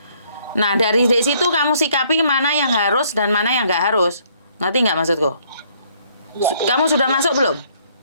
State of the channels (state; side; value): inverted; both; correlation -0.65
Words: Nah, dari situ kamu sikapi mana yang harus dan mana yang gak harus. Ngerti nggak maksudku? Kamu sudah masuk belum?